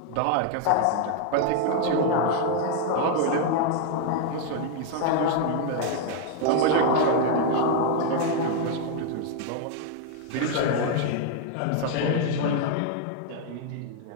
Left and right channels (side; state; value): both; different; correlation 0.00